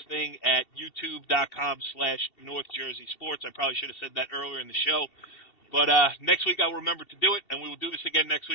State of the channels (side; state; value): right; late; 2.7 ms